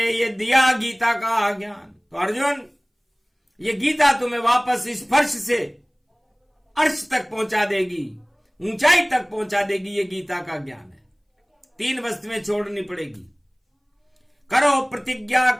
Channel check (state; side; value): identical; both; correlation 1.00